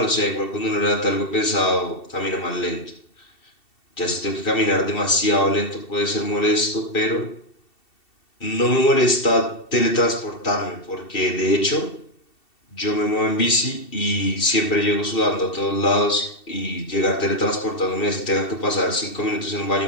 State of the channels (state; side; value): late; right; 2.7 ms